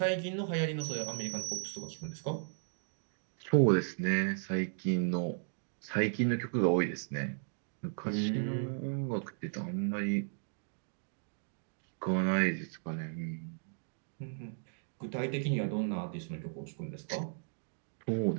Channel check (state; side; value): silent; left; digital silence